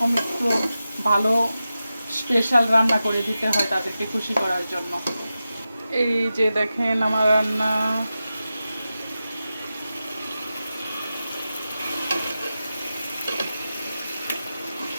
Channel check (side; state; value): both; inverted; correlation -0.92